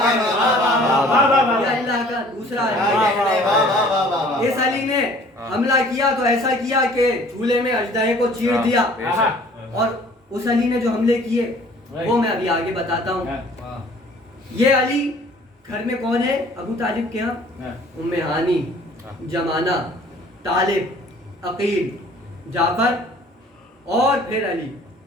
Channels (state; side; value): normal; both; correlation 0.53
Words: کا دوسرا علی. اس علی نے حملہ کیا تو ایسا کیا کہ جھولے میں اژدہے کو چیر دیا. اور اس علی نے جو حملے کیے وہ میں ابھی آگے بتاتا ہوں. یہ علی گھر میں کون ہے؟ ابو طالب کے ہاں ام ہانی، جمانہ، طالب، عقیل، جعفر اور پھر علی.